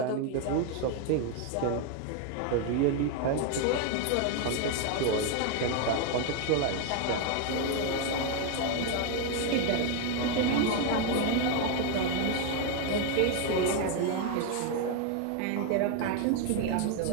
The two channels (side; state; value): both; different; correlation 0.01